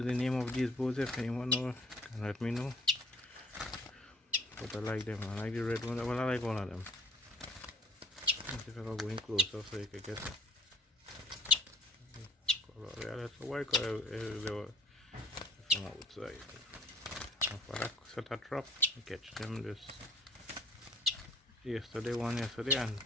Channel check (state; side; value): normal; both; correlation 0.59